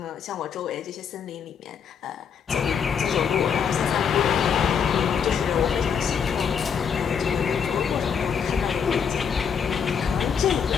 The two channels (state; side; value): quieter; right; 7.0 dB